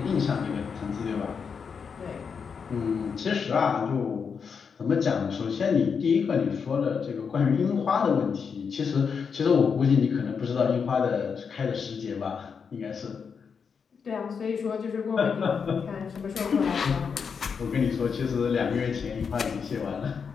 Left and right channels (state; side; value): quieter; right; 6.1 dB